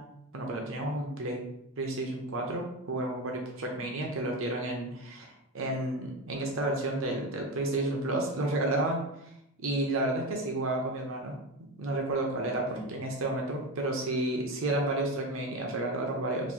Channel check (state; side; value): normal; both; correlation 0.20